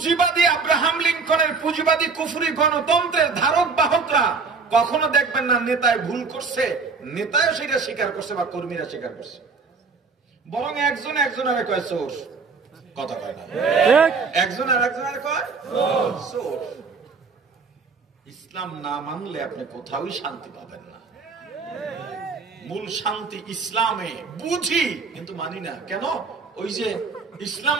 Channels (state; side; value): quieter; left; 4.7 dB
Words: আব্রাহাম লিঙ্কনের পুঁজিবাদী কুফরি গণতন্ত্রের ধারক বাহকরা কখনো দেখবেন না নেতায় ভুল করছে, নেতাও সেটা স্বীকার করছে বা কর্মীরা স্বীকার করছে, বরং একজন একজনের কয় চোর, কথা কয় না, একজন আর একজনের কয় চোর। ইসলাম না মানলে আপনি কোথাওই শান্তি পাবেন না। মূল শান্তি ইসলামে, বুঝি কিন্তু মানি না। কেন? ওই যে ইসলাম